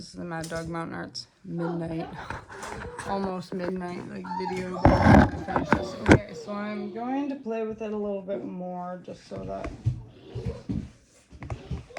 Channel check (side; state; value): both; identical; correlation 1.00